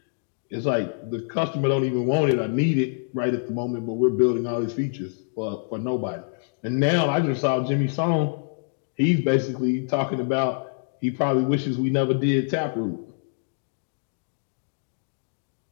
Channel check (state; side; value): silent; right; digital silence